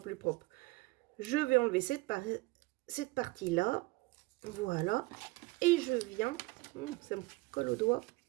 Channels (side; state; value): left; quieter; 22.5 dB